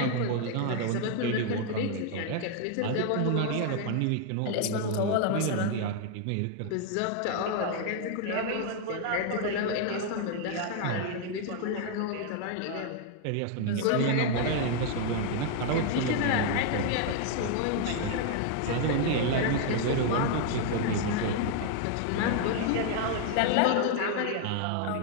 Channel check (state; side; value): different; both; correlation 0.00